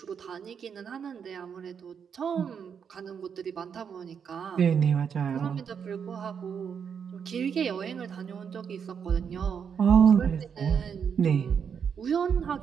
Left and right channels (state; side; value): quieter; left; 7.1 dB